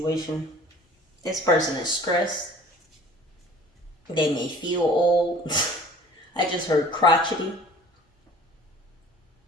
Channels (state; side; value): normal; both; correlation 0.47